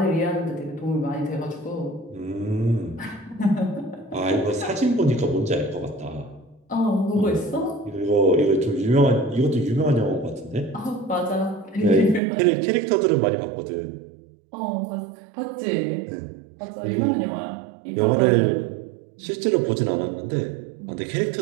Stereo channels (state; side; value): drops out; left; at 12.2 s